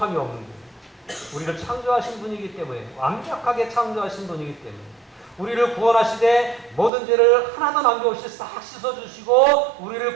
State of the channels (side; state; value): left; drops out; at 6.9 s